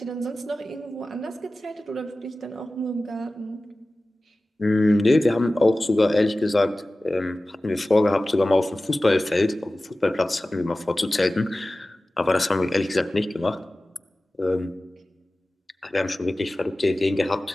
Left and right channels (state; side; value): normal; both; correlation 0.96